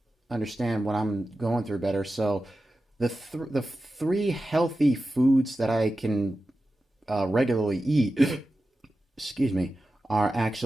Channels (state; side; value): normal; both; correlation 0.93